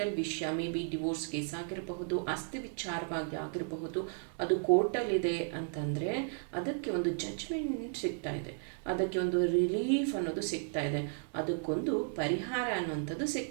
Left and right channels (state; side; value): silent; left; 55 dB below the other